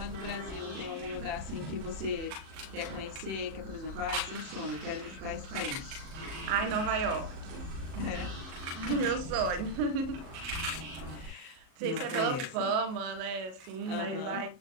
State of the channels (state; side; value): late; left; 37 ms